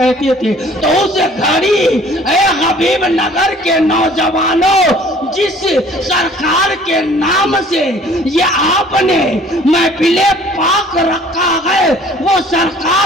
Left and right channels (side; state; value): both; normal; correlation 0.53